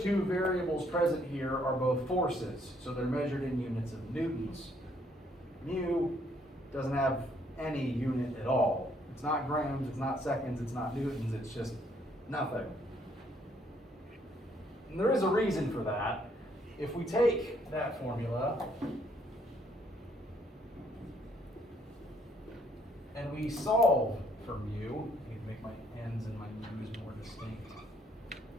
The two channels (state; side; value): normal; both; correlation 0.68